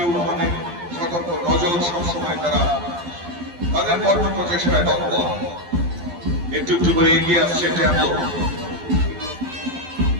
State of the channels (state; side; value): late; left; 12 ms